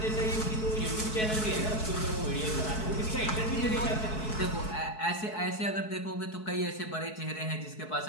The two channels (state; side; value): late; right; 4.6 ms